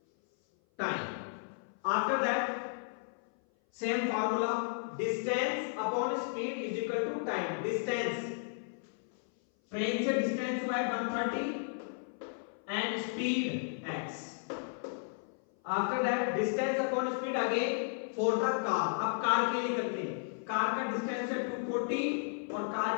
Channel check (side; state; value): right; silent; 55 dB below the other